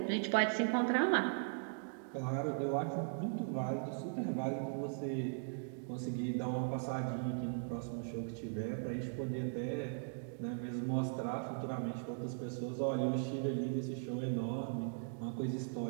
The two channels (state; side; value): silent; left; digital silence